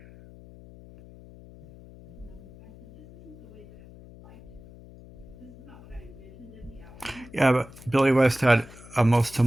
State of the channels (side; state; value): left; noise; hum, 20 dB below the sound